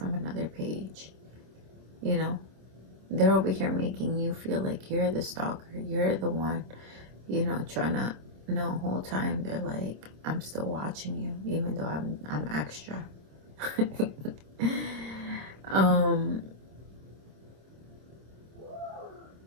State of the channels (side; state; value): left; late; 26 ms